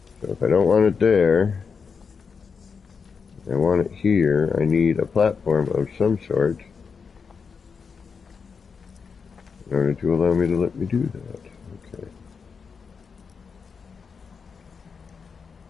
So if I don't want it there, I want it here. I need a platform of some sort in order to allow me to let me do that. Okay.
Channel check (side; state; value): right; quieter; 5.7 dB